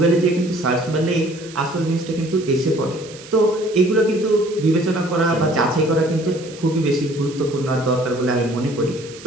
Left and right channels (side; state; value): right; noise; hiss, 18 dB below the sound